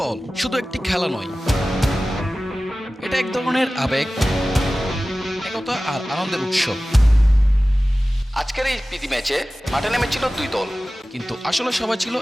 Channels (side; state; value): both; normal; correlation 0.96